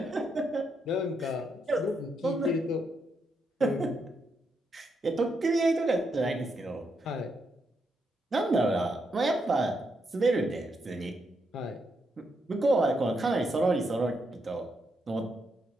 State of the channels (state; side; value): normal; both; correlation 0.80